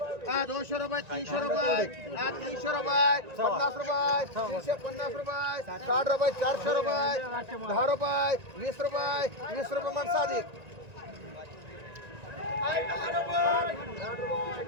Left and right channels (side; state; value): left; late; 1.9 ms